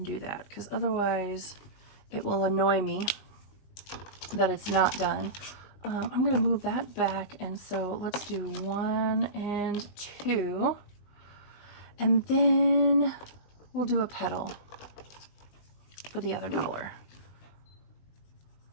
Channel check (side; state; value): right; late; 20 ms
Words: do that, because otherwise it will annoy me that it's not done. I'm gonna move that back, and so let's do 1 and 2, and then we'll do a petal for the other $1.